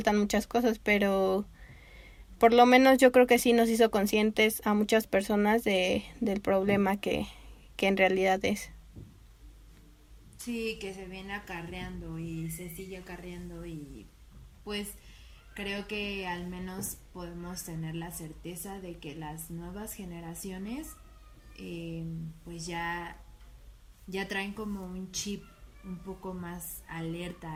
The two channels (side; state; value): both; identical; correlation 1.00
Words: muchas cosas, pero por lo menos yo creo que sí nos hizo conscientes a muchas personas del problema que en realidad es. Sí, que se viene acarreando y se sigue acarreando, y pues creo que al menos podemos tener la certeza de que las nuevas generaciones pues ya traen como un chip un poco más alerta